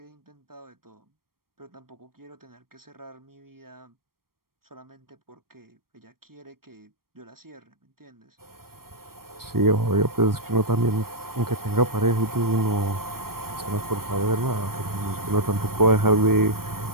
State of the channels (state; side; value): late; left; 0.93 ms